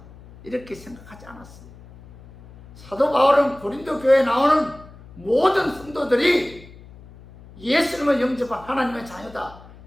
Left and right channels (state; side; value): noise; left; hum, 21 dB below the sound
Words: 이렇게 생각하지 않았어요. 사도 바울은 고린도 교회에 나오는 모든 성도들이 예수님을 영접한 하나님의 자녀다,